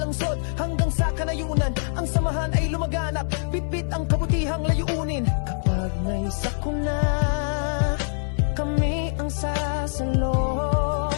hanggang sa Kanayunan, ang samahan ay lumaganap, bitbit ang kabutihang layunin. Kapag may sakuna, kami ang sasalo.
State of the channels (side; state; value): right; silent; digital silence